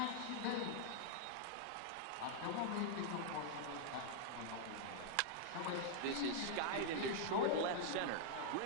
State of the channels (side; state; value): both; different; correlation -0.01